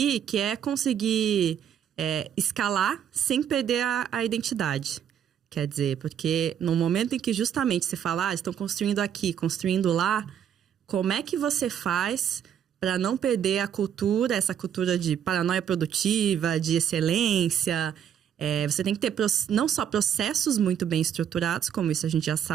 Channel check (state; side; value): quieter; left; 9.0 dB